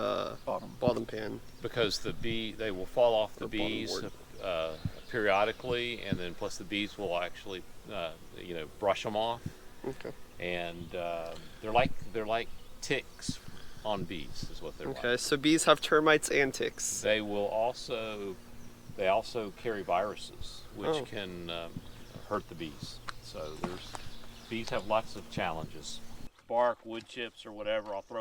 bottom pan? Because they will fall off the The bottom bees board. periodically, and then plus the bees will actually brush them off, Okay. and they're like ticks on bees is what they're Okay, like. so bees have termites and ticks. They also carry viruses which Oh. can hurt the bees. So bees have lots of challenges. Bark, wood chips, or whatever I'll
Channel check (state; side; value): identical; both; correlation 1.00